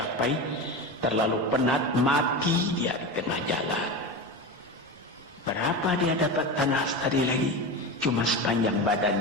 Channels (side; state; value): both; normal; correlation 0.23